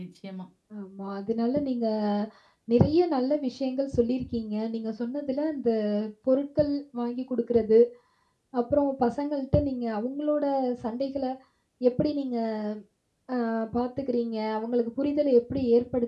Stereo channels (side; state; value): both; identical; correlation 1.00